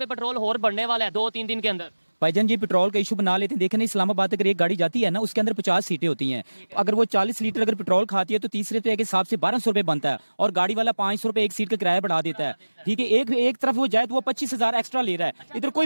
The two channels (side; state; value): both; inverted; correlation -1.00